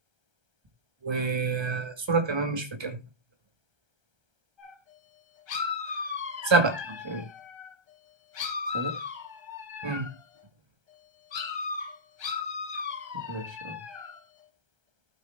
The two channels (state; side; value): late; left; 1.3 ms